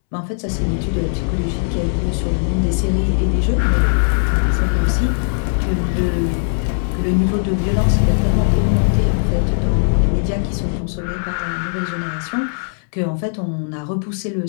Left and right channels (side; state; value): right; silent; 67 dB below the other